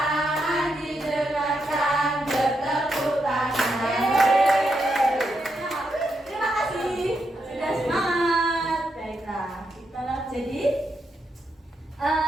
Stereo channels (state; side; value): normal; both; correlation 0.82